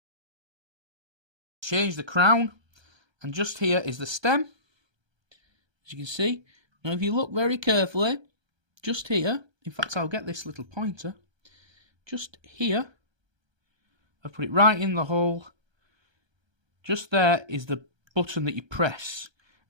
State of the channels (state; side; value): late; left; 1.3 ms